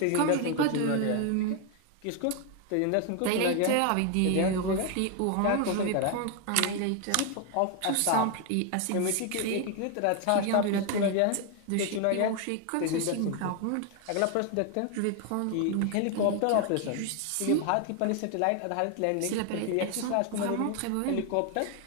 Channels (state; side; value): different; both; correlation 0.01